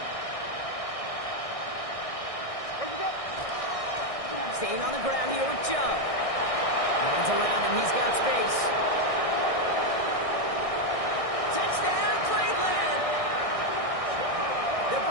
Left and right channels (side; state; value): right; late; 1.6 ms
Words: Staying on the ground here with Chubb. Hands around him, he's got space. Touchdown, Cleveland! The